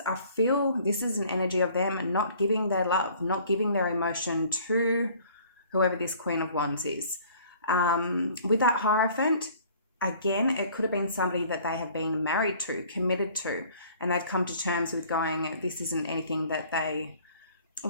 I feel this is an energy of them not giving their love, not giving their emotion to whoever this Queen of Wands is. With that Hierophant, again, it could have been somebody that they have been married to, committed to, and they've come to terms with going, this isn't anything that they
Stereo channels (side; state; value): both; inverted; correlation -0.53